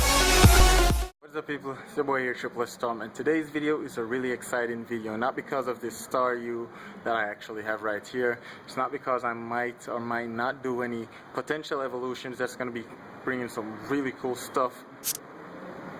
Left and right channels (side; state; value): both; identical; correlation 1.00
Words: What's up, people? It's your boy here, Triple S Tom, and today's video is a really exciting video. Not because of this star U that I actually have right here. It's not because I might or might not do any potential evolutions that's going to be bringing some really cool stuff,